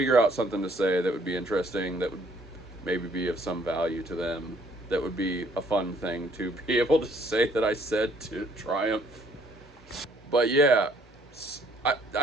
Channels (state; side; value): normal; both; correlation 0.62